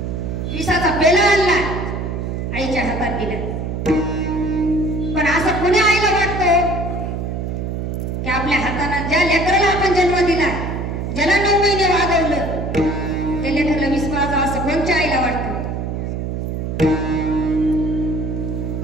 विसाचा पेला आणला आईच्या हातात दिला. पण असं कोणी आईला वाटतं की आपल्या हाताने ज्या लेकराला आपण जन्म दिला, ज्याला 9 महिने वागवलं, ते लेकराला विस्मराचं असं कोणत्या आईला वाटतं?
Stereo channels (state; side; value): noise; right; hum, 3 dB below the sound